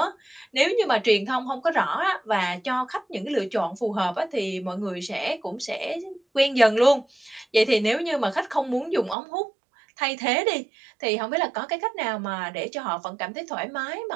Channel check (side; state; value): left; drops out; at 9.2 s